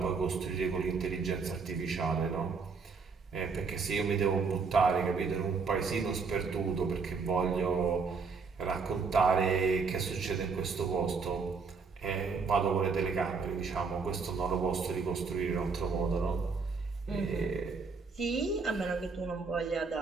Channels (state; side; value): quieter; left; 4.9 dB